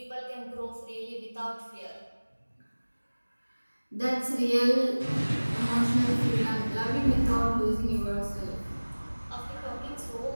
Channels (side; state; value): both; inverted; correlation -1.00